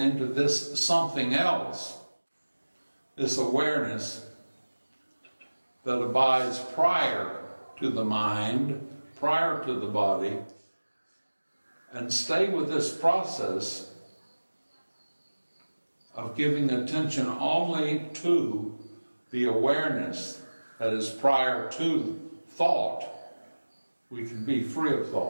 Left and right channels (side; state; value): both; inverted; correlation -1.00